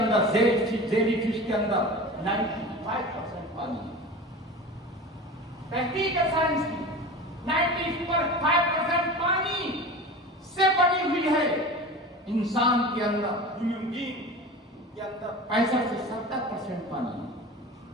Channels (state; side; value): normal; both; correlation 0.33